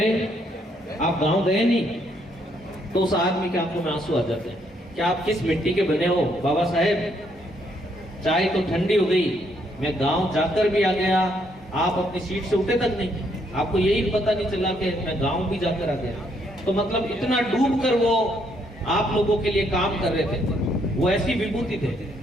आप गांव गए नहीं? तो उस आदमी के आंखों में आंसू आ जाते हैं। क्या आप किस मिट्टी के बने हो बाबा साहब? चाय तो ठंडी हो गई, मैं गांव जाकर भी आ गया, आप अपनी सीट से उठे तक नहीं, आपको यही पता नहीं चला कि मैं गांव भी जाकर आ गया। तो मतलब इतना डूब कर वो आप लोगों के लिए काम कर रहे थे। वो ऐसी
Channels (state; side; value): normal; both; correlation 0.72